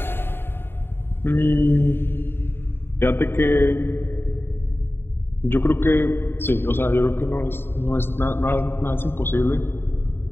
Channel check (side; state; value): right; late; 0.11 ms